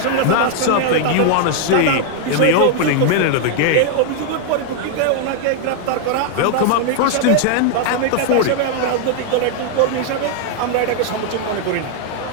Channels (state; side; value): different; both; correlation 0.00